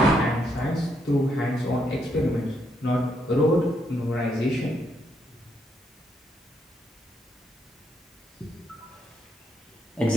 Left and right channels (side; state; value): both; normal; correlation 0.77